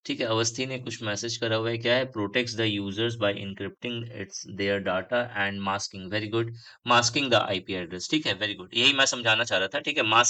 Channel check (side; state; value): both; identical; correlation 1.00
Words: ठीक है, अवस्थी ने कुछ मैसेज करा हुआ है, क्या है, protects the users by encrypting its their data and masking. Very good, masking the IP address. ठीक है, वेरी गुड, यही मैं समझाना चाह रहा था। ठीक है,